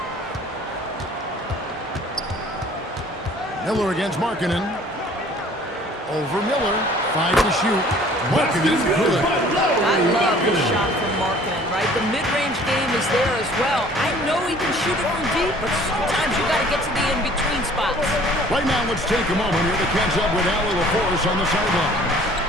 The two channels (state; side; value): normal; both; correlation 0.52